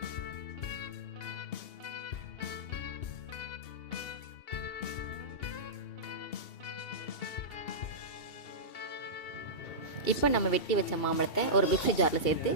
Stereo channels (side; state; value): right; late; 2.7 ms